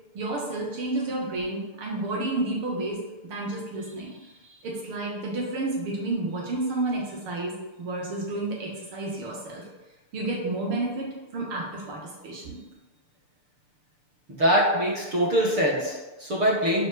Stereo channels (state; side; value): late; left; 6.7 ms